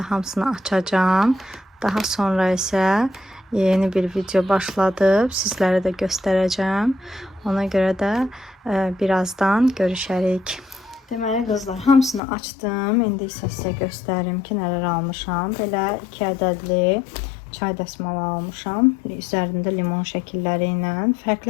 hamısını açacağım. Daha sonra isə yeni bir video başladıb. Sizlərə də göstərəcəm. Ona görə də birazdan görüşərik. Deməli qızlar, hamısını açdım. İndi isə sizə göstərim ki, nələr almışam. Belə 2 ədədli çay dəsmalı almışam. Üzərində limon şəkilləri ilə.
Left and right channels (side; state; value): right; drops out; at 12.2 s